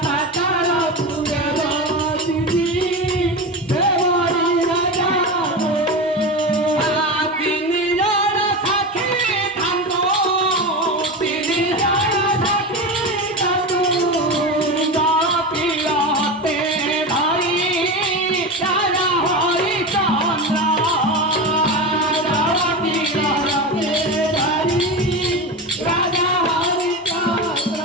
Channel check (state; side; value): normal; both; correlation 0.22